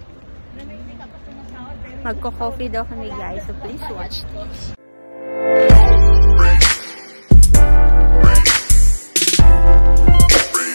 Magko-coffee daw kami, guys. So please watch this.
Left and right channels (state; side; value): inverted; both; correlation -1.00